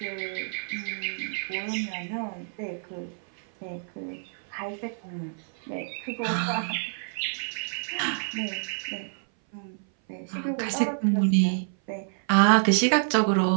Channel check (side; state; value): left; silent; 57 dB below the other